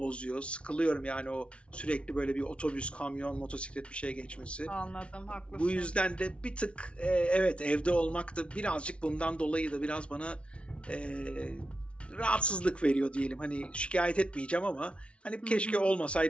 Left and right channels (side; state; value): right; late; 0.060 ms